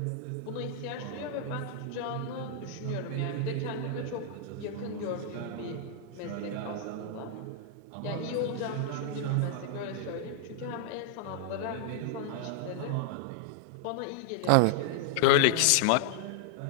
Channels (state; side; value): different; both; correlation -0.01